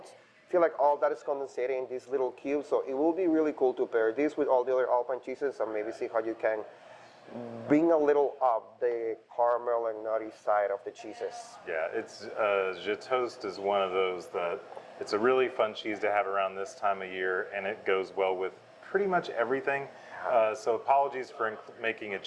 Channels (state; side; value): identical; both; correlation 1.00